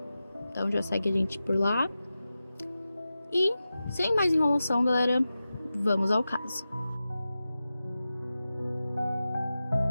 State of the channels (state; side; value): inverted; both; correlation -0.93